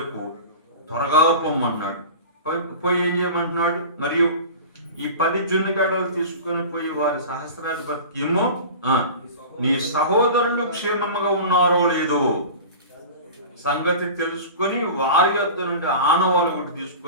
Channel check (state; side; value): inverted; both; correlation -0.35